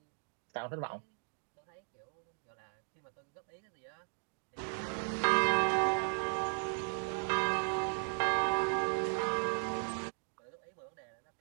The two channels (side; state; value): left; silent; 53 dB below the other